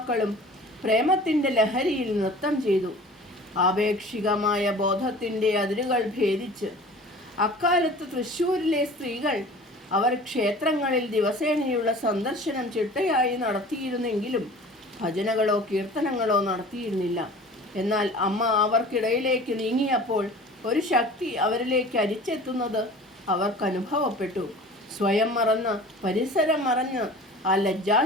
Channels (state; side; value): normal; both; correlation 0.43